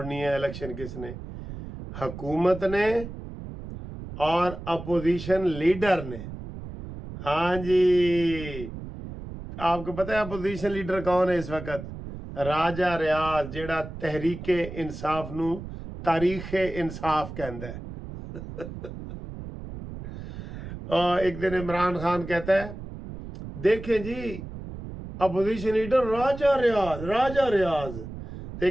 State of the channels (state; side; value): noise; right; rumble, 11 dB below the sound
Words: ہے, الیکشن کس نے, حکومت نے اور اپوزیشن لیڈر نے. ہاں جی, آپ کو پتہ ہے اپوزیشن لیڈر کون ہے اس وقت؟ راجہ ریاض, جیڑا تحریک انصاف نو تاریخ انصاف کہندا ہے. اور ایک دن عمران خان کہتا ہے دیکھیں جی اپوزیشن لیڈر راجہ ریاض. تو